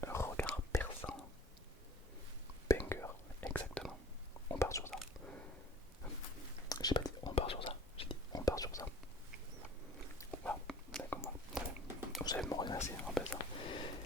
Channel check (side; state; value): both; normal; correlation 0.47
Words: Un regard perçant. Banger, exactement. On part sur ça. J'ai pas dit on part sur ça, j'ai dit on part sur ça. Voilà, d'accord, voilà. Vous allez me remercier en fait ça.